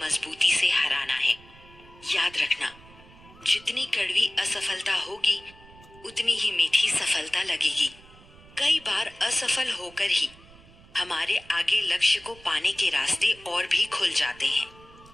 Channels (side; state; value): right; noise; rumble, 23 dB below the sound